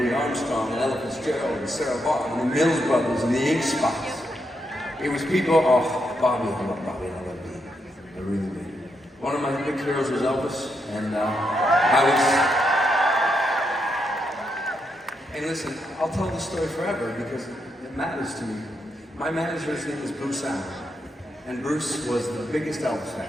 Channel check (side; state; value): both; normal; correlation 0.81